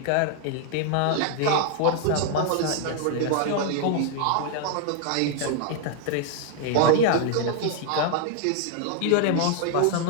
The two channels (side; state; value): both; different; correlation 0.00